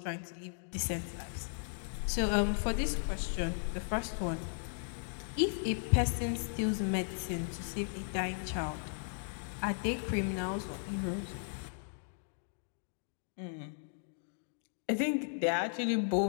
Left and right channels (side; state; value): right; silent; digital silence